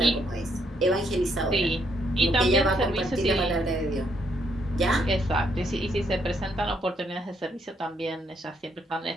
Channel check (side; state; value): both; normal; correlation 0.73